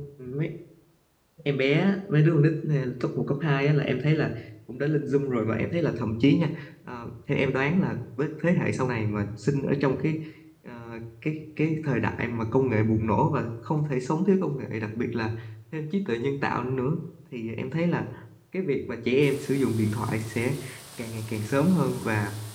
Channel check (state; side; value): identical; both; correlation 1.00